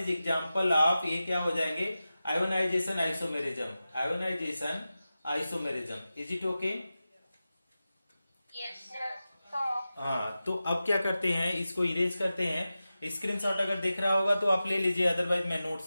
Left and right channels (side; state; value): both; inverted; correlation -0.94